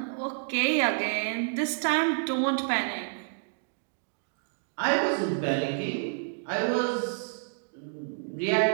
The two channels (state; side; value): silent; left; digital silence